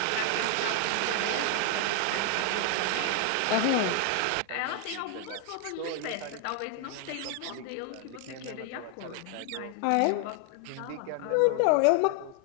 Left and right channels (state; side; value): different; both; correlation 0.00